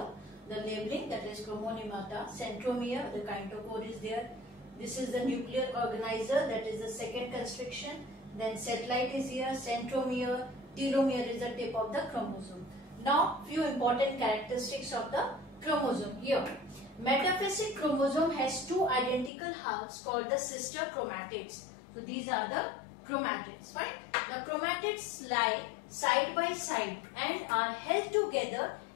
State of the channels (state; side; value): drops out; right; at 19.3 s